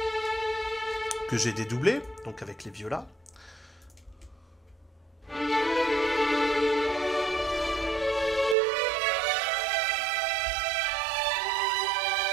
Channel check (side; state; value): left; drops out; at 8.6 s